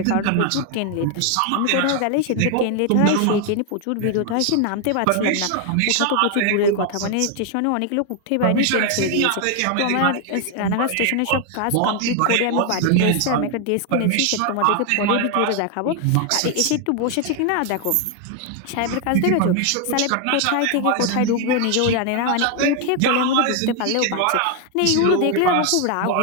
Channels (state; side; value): different; both; correlation 0.00